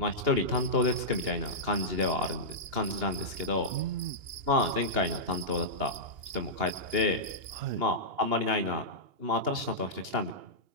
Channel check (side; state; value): left; late; 2.8 ms